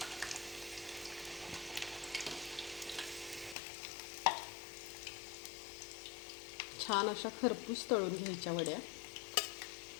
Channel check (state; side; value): drops out; right; at 3.6 s